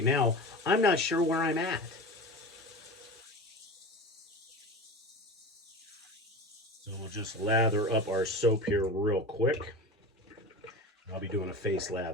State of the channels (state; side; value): normal; both; correlation 0.30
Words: now, I'm not sure where I'm at. So we'll just lather up our soap here real quick. I'll be doing a face